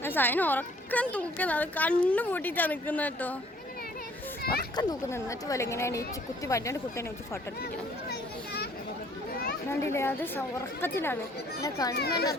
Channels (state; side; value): normal; both; correlation 0.58